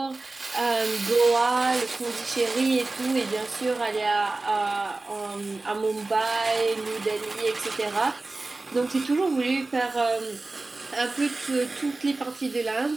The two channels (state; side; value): quieter; left; 3.3 dB